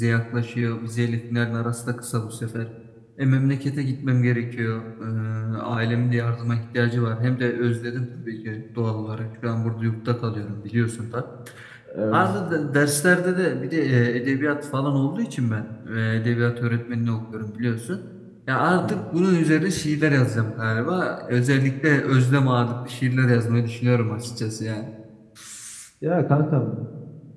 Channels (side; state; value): both; identical; correlation 1.00